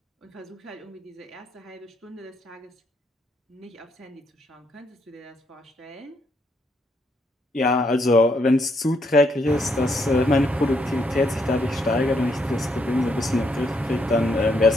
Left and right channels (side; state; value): both; normal; correlation 0.75